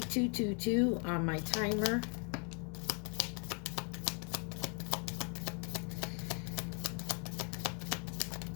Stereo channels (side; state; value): right; quieter; 37.8 dB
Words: 222 on my timer.